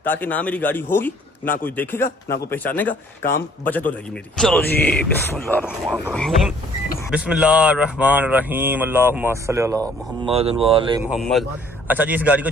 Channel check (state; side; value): normal; both; correlation 0.58